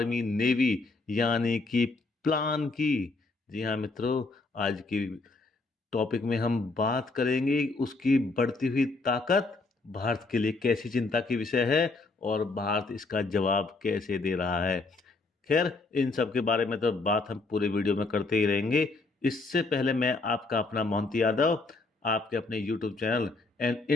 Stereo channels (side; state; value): right; quieter; 3.6 dB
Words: नेवी, यानी कि प्लान की। जी हाँ मित्रों, आज की टॉपिक में हम बात करेंगे उसकी बढ़ती हुई ताकत भारत के लिए कैसी चिंता की विषय है और भारत इसका जवाब कैसे दे रहा है। खैर, इन सब के बारे में तो बात हम पूरे वीडियो में करते ही रहेंगे। इससे पहले मैं आपका अपना मोहंती यादव आपके अपने YouTube channel and